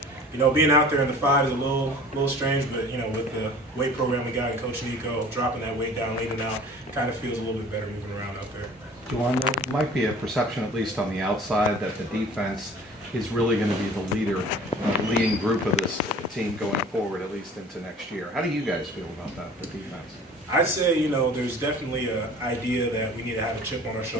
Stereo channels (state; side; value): normal; both; correlation 0.45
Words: You know, being out there in the 5 is a little strange, but, you know, with the weight program we got and Coach Nico dropping that weight down, leaning out, it kind of feels a little bit better moving around out there. Jowon, there might be a perception, at least on the outside, that the defense is really going to be the leading group of this team going forward, at least into next year. How do you guys feel about that, the defense? I'd say, you know, there's definitely an idea that we need to have a chip on our